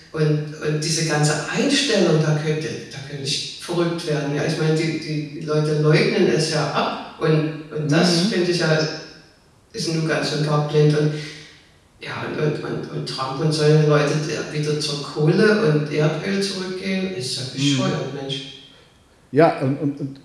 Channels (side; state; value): both; identical; correlation 1.00